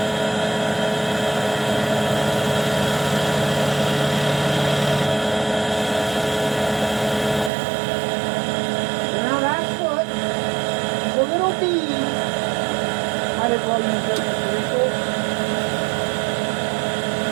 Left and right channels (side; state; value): left; drops out; at 7.5 s